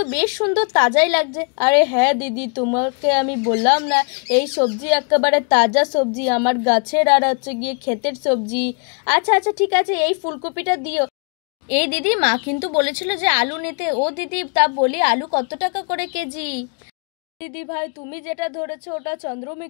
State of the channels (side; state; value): right; quieter; 38.0 dB